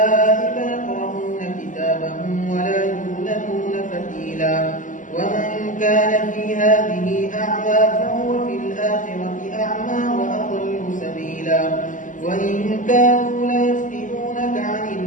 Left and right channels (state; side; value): late; right; 0.37 ms